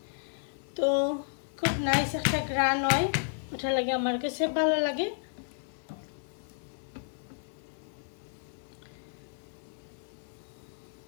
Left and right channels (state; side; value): silent; right; 56 dB below the other